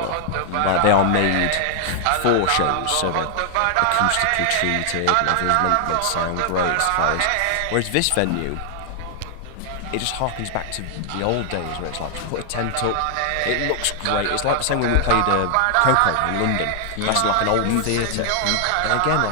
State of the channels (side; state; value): both; different; correlation 0.00